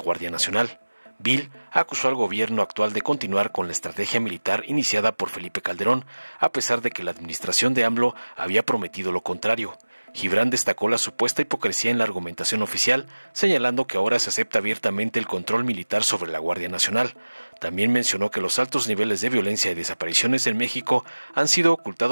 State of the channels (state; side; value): inverted; both; correlation -1.00